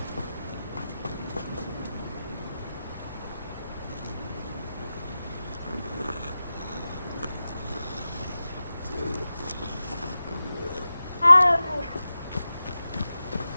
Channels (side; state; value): both; inverted; correlation -0.93